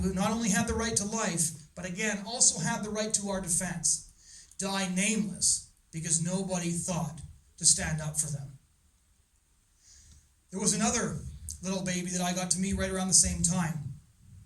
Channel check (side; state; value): both; identical; correlation 1.00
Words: not only had the right to life, but again, also had the right to our defense, die nameless because nobody thought to stand up for them. There was another little baby that I got to meet right around the same time.